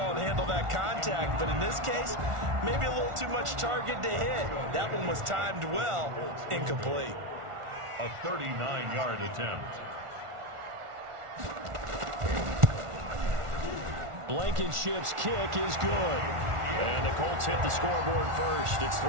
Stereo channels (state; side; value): late; left; 1.4 ms